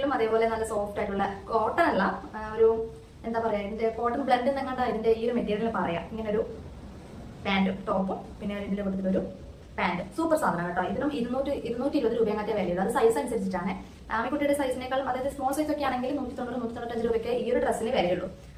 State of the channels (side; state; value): both; identical; correlation 1.00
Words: അതേപോലെ നല്ല സോഫ്റ്റ് ആയിട്ടുള്ള കോട്ടൺ അല്ല, ഒരു എന്താ പറയാ, ഇതിന്റെ കോട്ടൺ ബ്ലെൻഡ് എന്നങ്ങാണ്ട് ഇതിന്റെ ഈ ഒരു മെറ്റീരിയൽ പറയാം. ഇങ്ങനെ ഒരു പാന്റും ടോപ്പും പിന്നെ ഇതിന്റെ കൊടുത്തിട്ടൊരു പാന്റ്. സൂപ്പർ സാധനം കേട്ടോ. ഇതിനും 220 രൂപയൊക്കെ വിലയുള്ളൂ. അത് സൈസ് അനുസരിച്ചിട്ടാണ്. ആമിക്കുട്ടിയുടെ സൈസിനേക്കാളും, അതായത് സ്മോൾ സൈസ് ഒക്കെ ആണെങ്കിൽ 190-195 രൂപയ്ക്ക് ഈ ഒരു ഡ്രസ്സിന് വിലയുള്ളൂ.